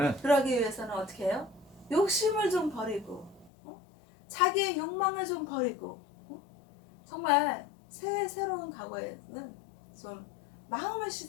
그러기 위해서는 어떻게 해요? 욕심을 좀 버리고, 자기의 욕망을 좀 버리고, 정말 새로운 과거에는 좀 마음을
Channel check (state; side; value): drops out; right; at 3.5 s